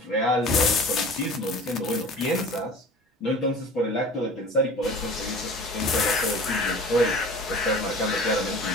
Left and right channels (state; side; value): normal; both; correlation 0.41